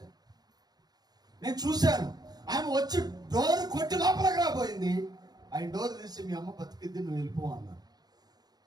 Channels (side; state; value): left; late; 0.19 ms